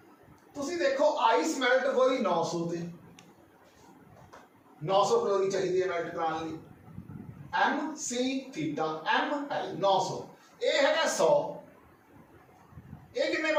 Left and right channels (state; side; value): identical; both; correlation 1.00